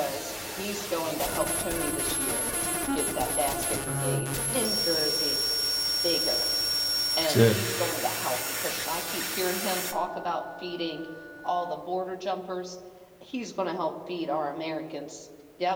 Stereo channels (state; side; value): identical; both; correlation 1.00